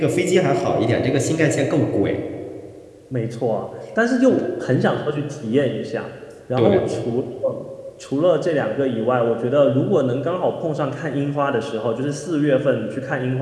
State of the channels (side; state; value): both; identical; correlation 1.00